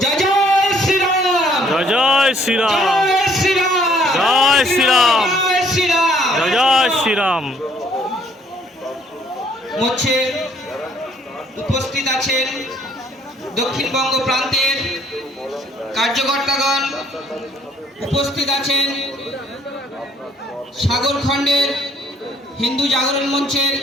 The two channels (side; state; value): both; normal; correlation 0.63